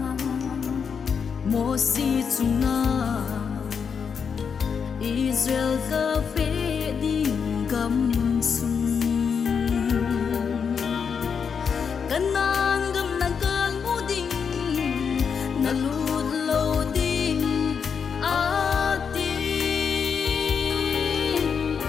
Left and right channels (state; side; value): quieter; right; 6.5 dB